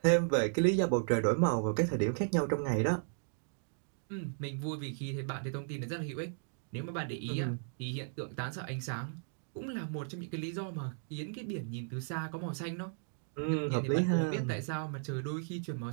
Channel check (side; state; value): left; silent; digital silence